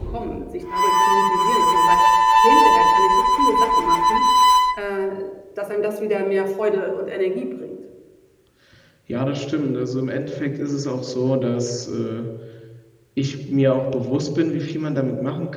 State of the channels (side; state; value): both; identical; correlation 1.00